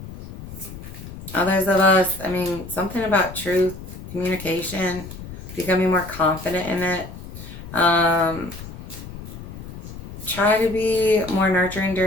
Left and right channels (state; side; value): noise; left; rumble, 12 dB below the sound